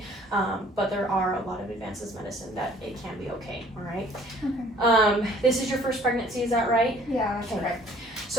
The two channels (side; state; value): both; normal; correlation 0.55